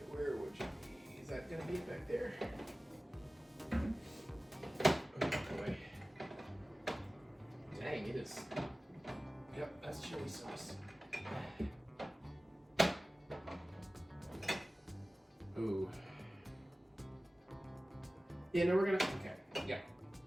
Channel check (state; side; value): normal; both; correlation 0.97